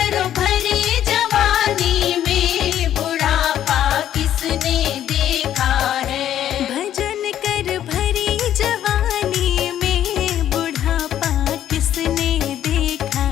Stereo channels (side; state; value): right; quieter; 11.1 dB